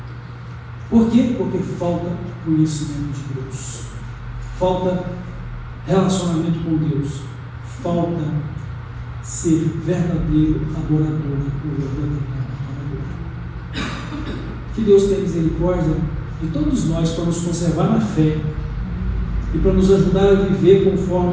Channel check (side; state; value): both; identical; correlation 1.00